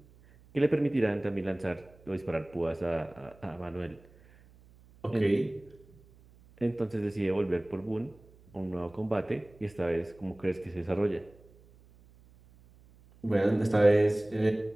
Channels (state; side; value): noise; right; hum, 26 dB below the sound